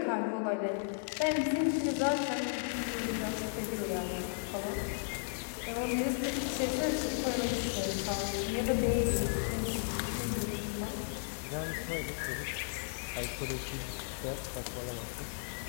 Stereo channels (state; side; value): silent; right; digital silence